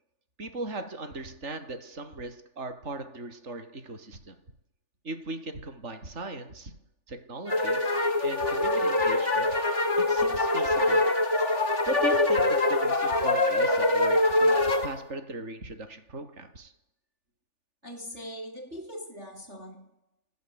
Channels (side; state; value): left; late; 3.4 ms